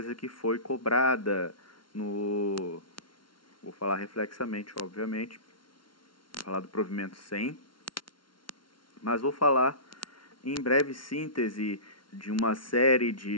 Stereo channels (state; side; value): late; right; 0.73 ms